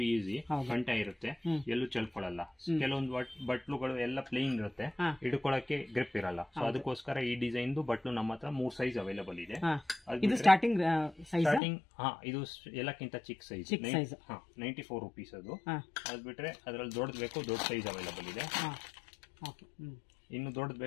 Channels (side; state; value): right; drops out; at 11.6 s